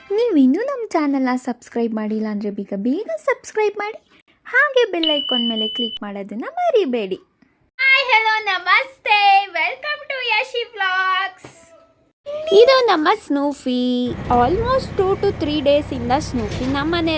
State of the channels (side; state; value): both; identical; correlation 1.00